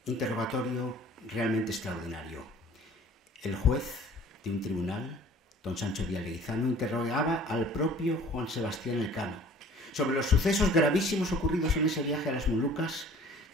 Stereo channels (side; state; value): both; normal; correlation 0.50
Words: interrogatorio realmente extraordinario. El juez de un tribunal, don Sancho Díaz Leguizano, interrogaba al propio Juan Sebastián Elcano sobre los sucesos gravísimos ocurridos en ese viaje a las Molucas